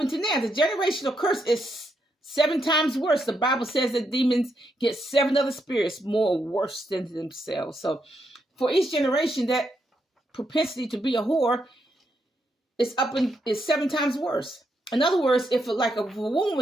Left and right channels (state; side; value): normal; both; correlation 0.80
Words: now. The generational curse is 7 times worse. The Bible says that demons get 7 other spirits more worse than themselves. So for each generation, that propensity to be a whore is 7 times worse. In other words, if a